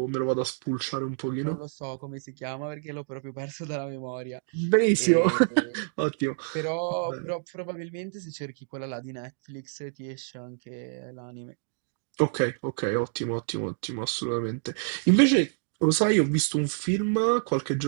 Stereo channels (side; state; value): left; silent; digital silence